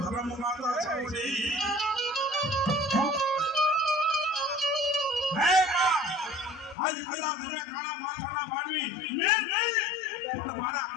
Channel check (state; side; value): drops out; right; at 6.8 s